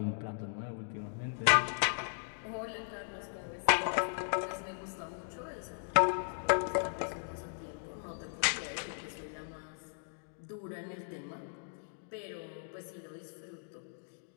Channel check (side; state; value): right; silent; digital silence